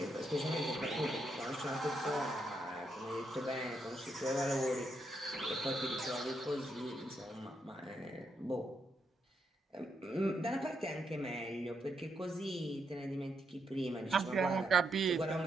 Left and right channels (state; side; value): normal; both; correlation 0.80